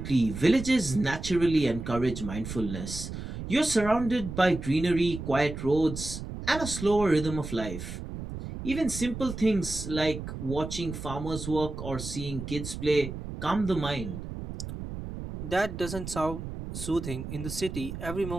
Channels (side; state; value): right; noise; rumble, 8 dB below the sound